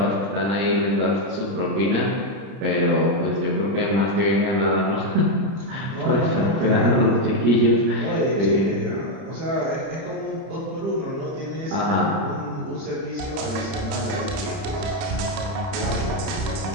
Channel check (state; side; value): late; left; 31 ms